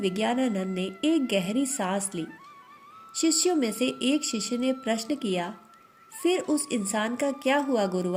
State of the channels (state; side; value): identical; both; correlation 1.00